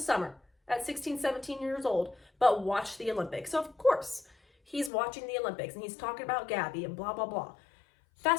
summer at 16, 17 years old, but watch the Olympics. So of course, he's watching the Olympics and he's talking about Gabby and blah, blah, blah.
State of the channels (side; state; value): right; drops out; at 4.9 s